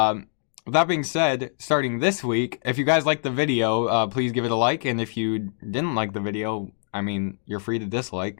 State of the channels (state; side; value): silent; right; digital silence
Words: that being said, starting this week, if you guys liked the video, please give it a like, and if you didn't like the video, I mean, you're free to